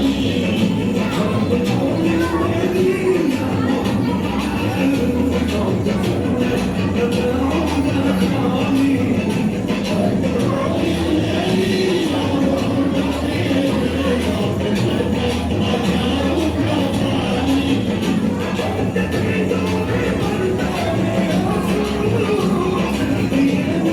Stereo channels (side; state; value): both; identical; correlation 1.00